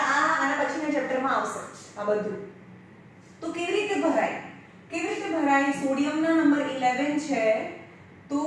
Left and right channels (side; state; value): both; identical; correlation 1.00